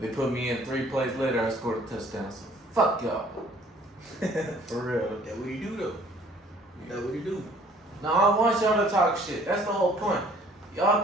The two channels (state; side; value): normal; both; correlation 0.56